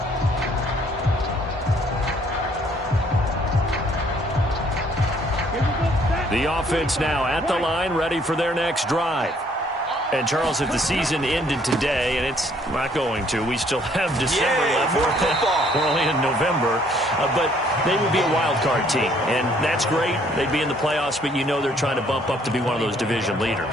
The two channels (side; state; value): both; normal; correlation 0.63